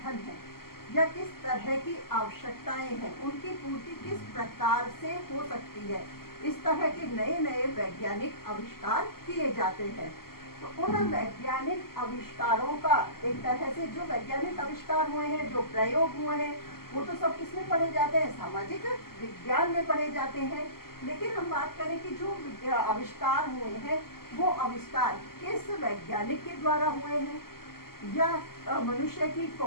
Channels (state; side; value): late; right; 0.93 ms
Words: है या किस तरह की आवश्यकताएं हैं, उनकी पूर्ति किस प्रकार से हो सकती है, इस तरह के नए नए वैज्ञानिक आविष्कार किए जाते हैं। तो उन वैज्ञानिक आविष्कारों का एक तरह से, जो वैज्ञानिक आविष्कार हुए हैं, जो प्रयोग हुए हैं, वो तो सब किसमें पढ़े जाते हैं, सामाजिक विज्ञान में पढ़े जाते हैं। लेकिन हम बात करें कि जो आविष्कार हुए हैं, वो आविष्कार किस वैज्ञानिक के द्वारा हुए हैं, या मनुष्य की